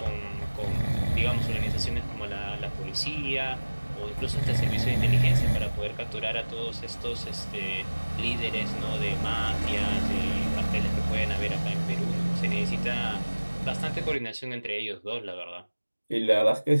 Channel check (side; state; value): both; inverted; correlation -1.00